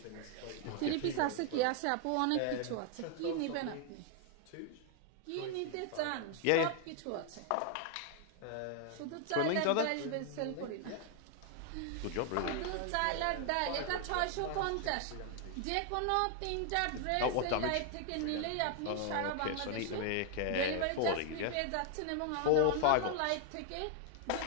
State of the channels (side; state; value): both; different; correlation 0.00